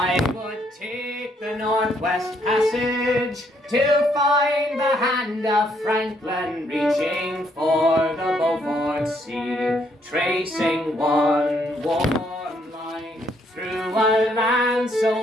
would take the Northwest Passage to find the hand of Franklin reaching for the Beaufort Sea, tracing one warm line through a land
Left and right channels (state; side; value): normal; both; correlation 0.71